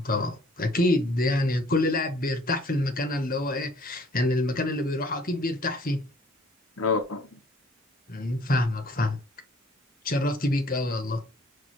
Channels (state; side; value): normal; both; correlation 0.57